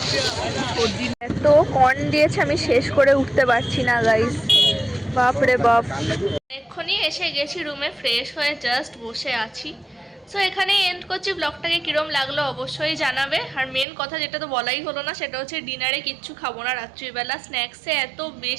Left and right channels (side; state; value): left; drops out; at 13.9 s